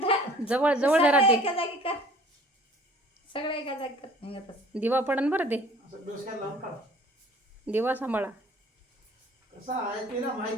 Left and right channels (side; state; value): both; normal; correlation 0.51